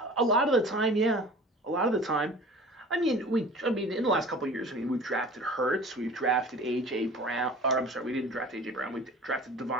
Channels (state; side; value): normal; both; correlation 0.42